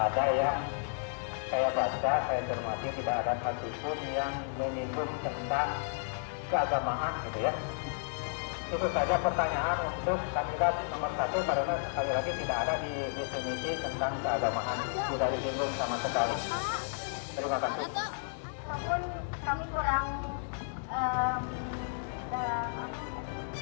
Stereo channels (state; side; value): silent; right; digital silence